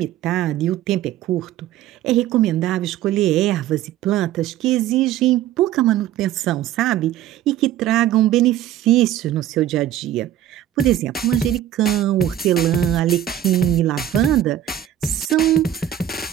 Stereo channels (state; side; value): quieter; left; 11.7 dB